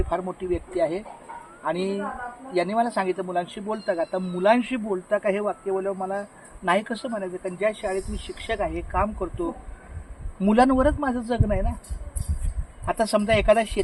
फार मोठी व्यक्ती आहे. आणि यांनी मला सांगितलं मुलांशी बोलता का. आता मुलांशी बोलता का हे वाक्य बोलल्यावर मला नाही कसं म्हणायचं. कारण ज्या शाळेत मी शिक्षक आहे, काम करतो, मुलांवरच माझं जगणं आहे ना. आता समजा एखादा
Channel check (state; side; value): identical; both; correlation 1.00